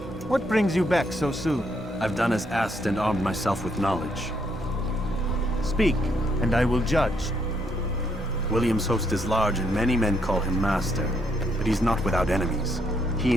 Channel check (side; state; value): both; normal; correlation 0.73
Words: what brings you back so soon? I've done as asked and armed myself with knowledge. Speak, and I will judge. William's host is large and many men call him master, but he's not without enemies. He